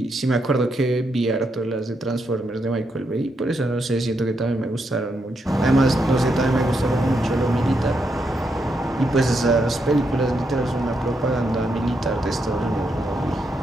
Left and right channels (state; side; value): normal; both; correlation 0.81